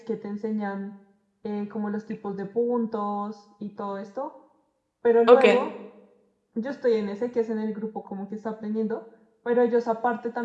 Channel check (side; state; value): both; identical; correlation 1.00